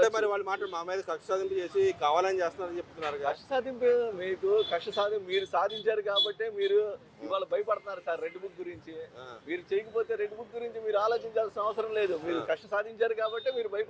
మరి వాళ్ళు మా మీద కక్ష సాధింపు చేసి కావాలని చేస్తున్నారని చెప్తున్నారు. కక్ష సాధింపు మీరు సాధించారు కాబట్టి మీరు ఇవాళ భయపడుతున్నారు సార్. రెడ్ బుక్ గురించి మీరు చేయకపోతే రెడ్ బుక్ గురించి మీరు ఆలోచించాల్సిన అవసరం లేదు. మీరు కక్ష సాధించారు కాబట్టి మీరు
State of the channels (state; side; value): identical; both; correlation 1.00